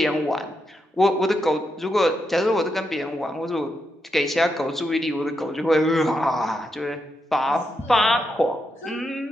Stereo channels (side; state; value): both; normal; correlation 0.83